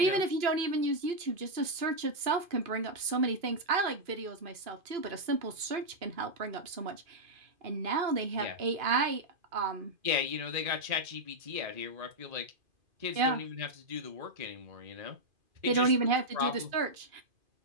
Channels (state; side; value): late; left; 2.5 ms